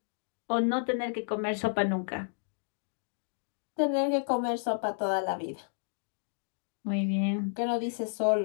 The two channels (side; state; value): right; silent; digital silence